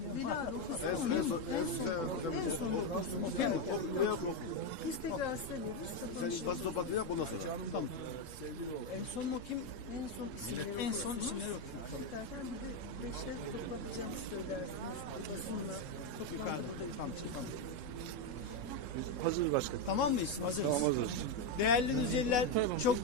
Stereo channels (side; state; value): right; late; 3.7 ms